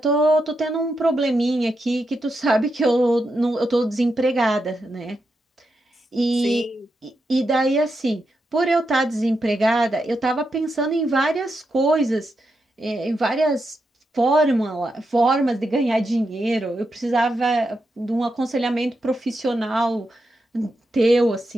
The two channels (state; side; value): normal; both; correlation 0.85